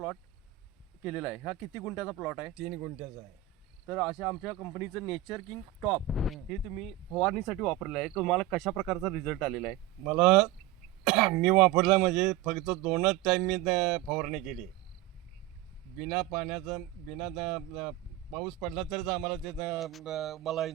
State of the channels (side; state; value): left; quieter; 14.1 dB